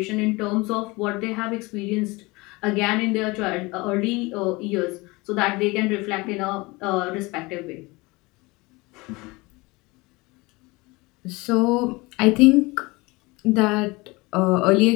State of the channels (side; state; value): right; quieter; 23.9 dB